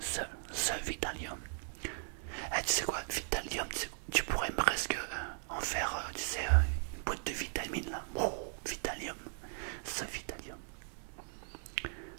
Vitalium. Eh, tu sais quoi, Vitalium, tu pourrais presque en faire, tu sais, une boîte de vitamines là. Oh, Vitalium, ce Vitalium.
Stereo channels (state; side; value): silent; left; 53 dB below the other